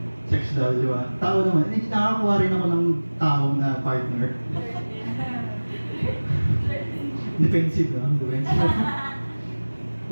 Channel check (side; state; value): both; inverted; correlation -1.00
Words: sex doll, di ba? Tao naman. Nakakakuha rin ako ng tao na partner. Defensive lang. Defensive.